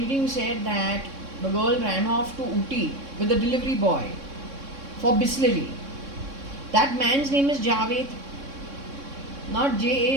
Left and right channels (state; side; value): late; left; 3.6 ms